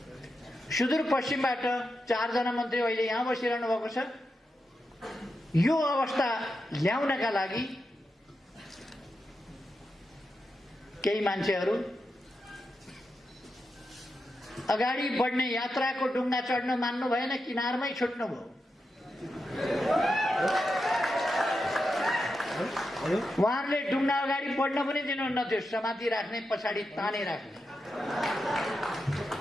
सुदूर पश्चिमबाट 4 जना मन्त्री अहिले यहाँ बसिरहनु भएको छ। यो अवस्था ल्याउनका लागि केही मान्छेहरू अगाडि बढ्ने यात्राको डुङ्गा चढ्न मान्नु भएन, किनारमै छुट्नु भयो। उहाँहरूले डुङ्गा अगाडि बढ्न पनि दिनुहुन्न थियो, समाति राख्ने, पछाडि ताने राख्ने।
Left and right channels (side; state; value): both; normal; correlation 0.88